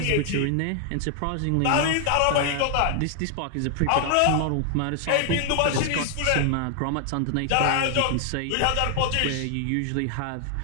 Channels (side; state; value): both; different; correlation 0.00